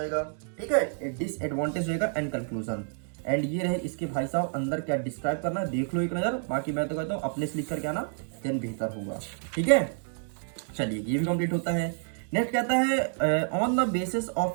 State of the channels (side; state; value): left; silent; 59 dB below the other